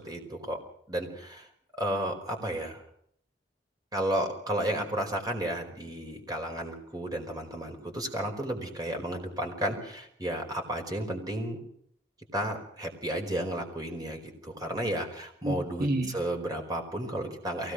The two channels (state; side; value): normal; both; correlation 0.53